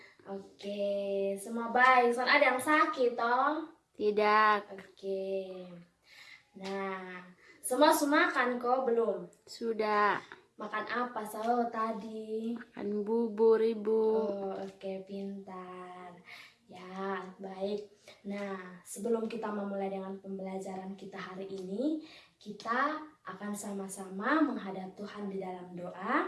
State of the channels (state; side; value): identical; both; correlation 1.00